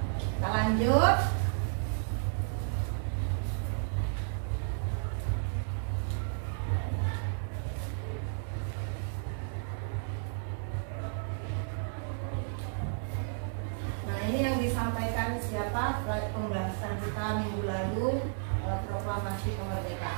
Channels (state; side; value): silent; left; digital silence